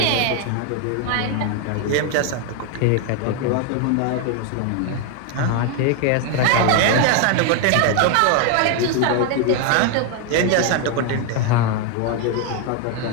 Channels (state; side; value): different; both; correlation 0.01